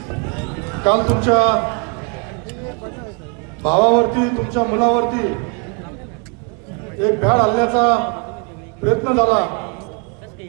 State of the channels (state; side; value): quieter; left; 34.6 dB